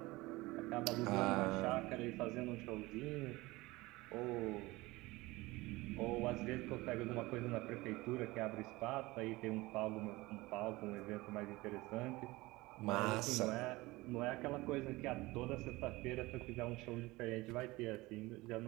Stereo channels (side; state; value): left; quieter; 20.9 dB